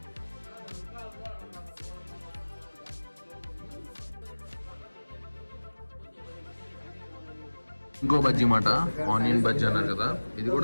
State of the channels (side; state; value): both; inverted; correlation -1.00